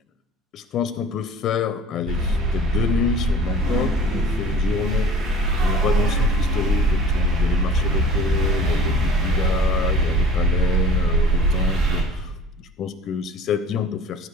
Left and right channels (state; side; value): normal; both; correlation 0.45